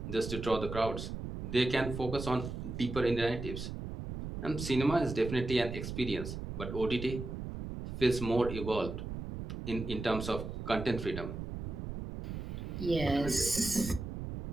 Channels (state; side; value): noise; right; rumble, 6 dB below the sound